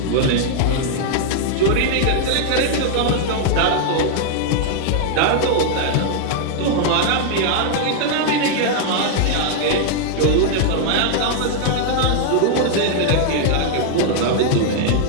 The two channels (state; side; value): different; both; correlation -0.01